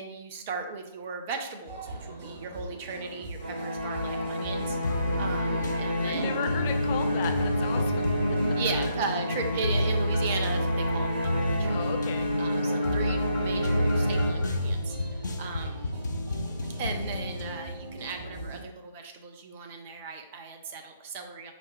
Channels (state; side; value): inverted; both; correlation -0.75